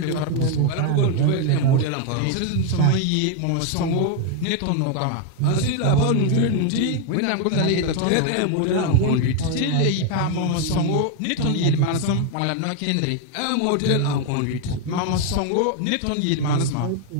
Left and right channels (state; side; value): different; both; correlation 0.01